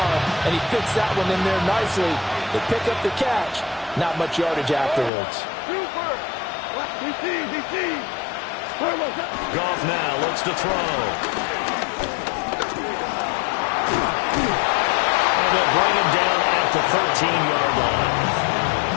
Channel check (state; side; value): drops out; right; at 5.1 s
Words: and he fits that one in there nicely. They pick up the catch. Not much yardage afterwards. Super. He sees. Goff now looks to throw. And they'll bring him down at the 13-yard line.